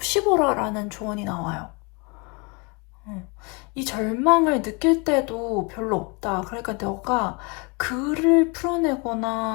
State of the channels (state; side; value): quieter; right; 30.5 dB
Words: 라는 조언이 나와요. 이 절망을 느낄 때도 별로 없다. 그러니까 너가 글을